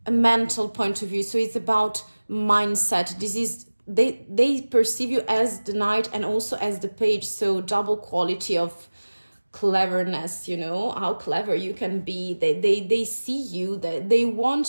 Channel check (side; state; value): both; inverted; correlation -1.00